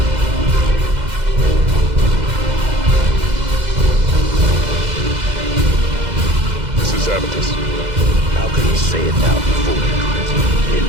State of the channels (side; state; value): left; late; 2.0 ms